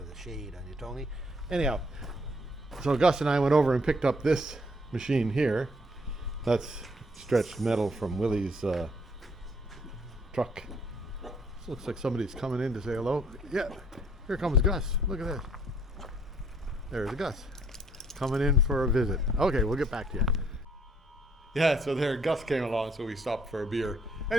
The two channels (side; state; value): both; normal; correlation 0.65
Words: the shade on you, Tony. Anyhow, so Gus and I went over and picked up this machine here. That's stretched metal from Willie's truck. This looks like somebody's coming in to say hello. Yeah, here comes Gus. Look at this. There's Gus coming in for a visit. Okay, we'll get back to you. Yeah, so there Gus came along, so we stopped for a beer.